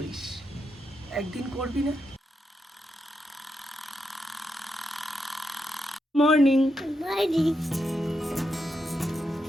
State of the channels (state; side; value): normal; both; correlation 0.84